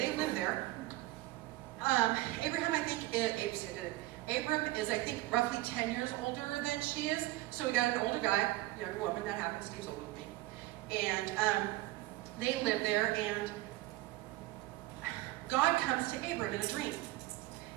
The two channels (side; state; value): left; quieter; 18.3 dB